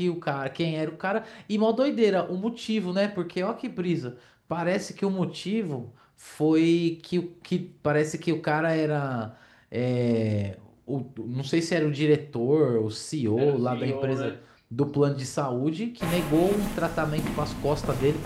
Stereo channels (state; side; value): identical; both; correlation 1.00